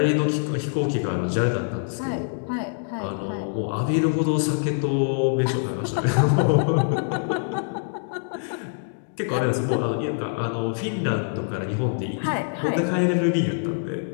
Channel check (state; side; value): silent; right; digital silence